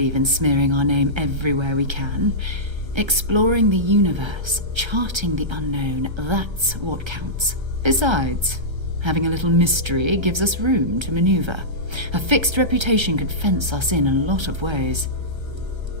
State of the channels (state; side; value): late; left; 1.3 ms